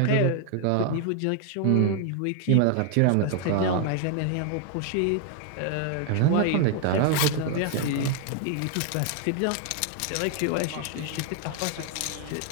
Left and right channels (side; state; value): both; different; correlation 0.00